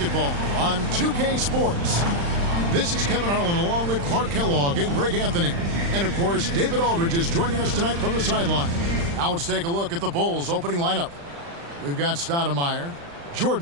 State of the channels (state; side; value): late; left; 35 ms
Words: on 2K Sports. This is Kevin Harlan along with Clark Kellogg and Greg Anthony. And, of course, David Aldridge is joining us tonight from the sideline. Now let's take a look at the Bulls' opening lineup. We've got Stoudemire.